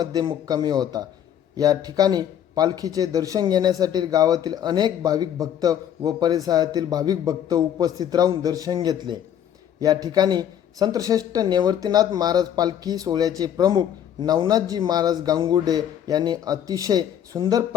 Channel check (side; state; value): right; quieter; 9.9 dB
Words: मुक्कामी होता. या ठिकाणी पालखीचे दर्शन घेण्यासाठी गावातील अनेक भाविक भक्त व परिसरातील भाविक भक्त उपस्थित राहून दर्शन घेतले. या ठिकाणी संतश्रेष्ठ निवृत्तीनाथ महाराज पालखी सोहळ्याचे प्रमुख नवनाथजी महाराज गांगुर्डे यांनी अतिशय सुंदर